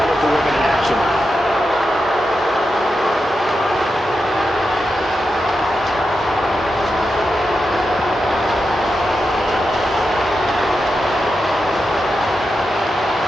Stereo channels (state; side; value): normal; both; correlation 0.88